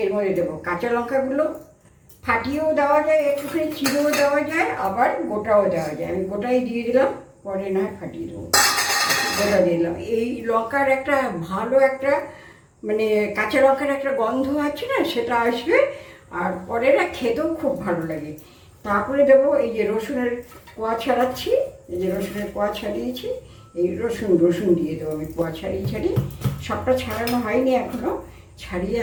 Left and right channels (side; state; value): both; identical; correlation 1.00